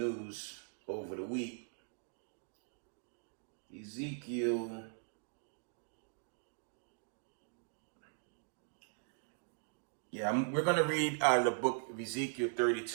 over the week. Yeah, we're going to read out of the book of Ezekiel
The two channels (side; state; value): left; silent; digital silence